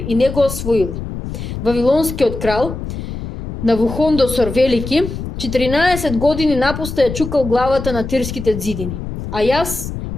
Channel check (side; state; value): left; noise; rumble, 7 dB below the sound